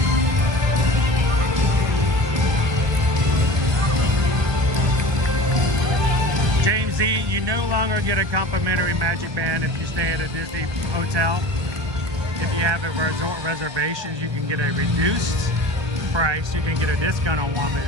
You no longer get a complimentary Magic Band if you stay at a Disney hotel. If you have a resort reservation, you can get a reduced price. You can get a discount on one,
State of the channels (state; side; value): late; left; 1.6 ms